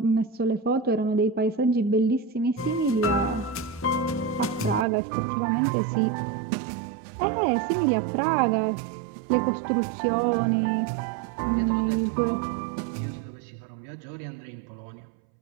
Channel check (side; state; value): left; drops out; at 4.9 s